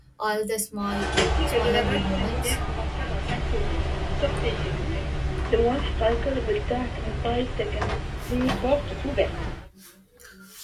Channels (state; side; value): identical; both; correlation 1.00